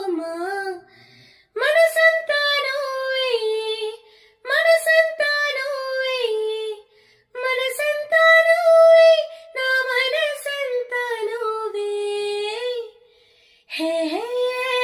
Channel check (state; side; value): identical; both; correlation 1.00